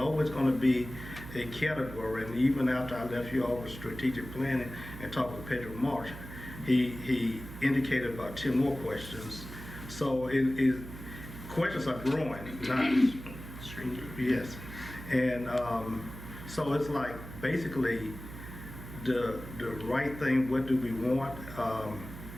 going to be a category. And even after I left you all with strategic planning and talked with Pedro Marsh, he indicated about 10 more questions. So questions are growing, not shrinking. Yes, and so it's like basically the right thing. What do we want?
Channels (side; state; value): right; noise; hum, 12 dB below the sound